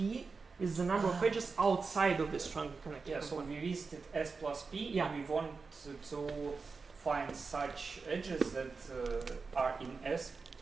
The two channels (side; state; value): left; quieter; 4.6 dB